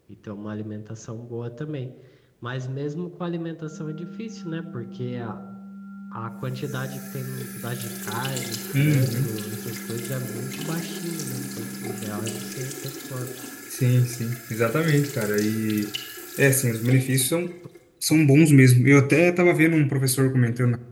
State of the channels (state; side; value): identical; both; correlation 1.00